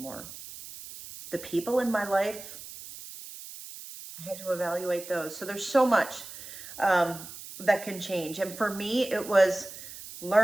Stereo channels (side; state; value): right; noise; hiss, 13 dB below the sound